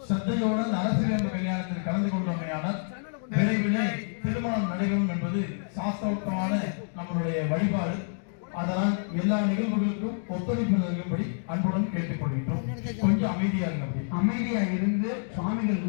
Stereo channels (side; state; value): right; silent; digital silence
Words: சத்தையோடு அந்த அரசு விரும்பு கல்யாணத்தில் கலந்து கொண்டோமையானால் விரைவிலே திருமணம் நடைபெறும் என்பது சாஸ்திரோக்தமான நம்மளுடைய வழிபாடு. அதனால் எல்லா நிகழ்வுகளுக்கும் ஒத்துழைப்பு நல்கும்படி அன்புடன் கேட்டுக்கொள்கின்றோம். கொஞ்சம் அமைதியா இருங்க. அமைதியா இருந்து சுவாமிகள்